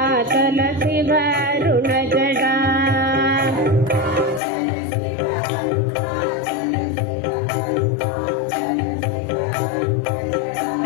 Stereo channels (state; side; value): drops out; right; at 4.4 s